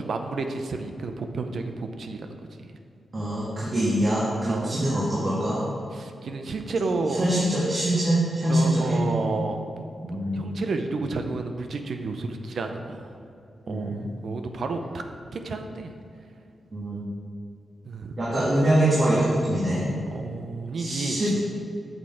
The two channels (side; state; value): both; normal; correlation 0.87